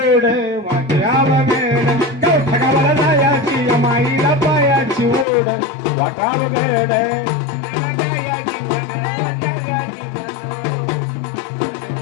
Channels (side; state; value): right; drops out; at 5.2 s